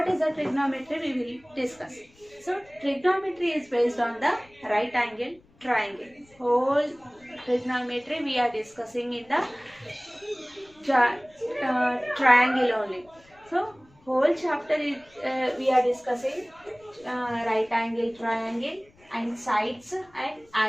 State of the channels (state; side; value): noise; left; rumble, 30 dB below the sound